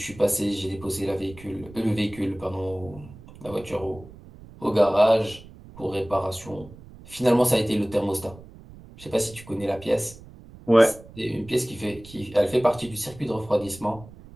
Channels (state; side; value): noise; right; rumble, 19 dB below the sound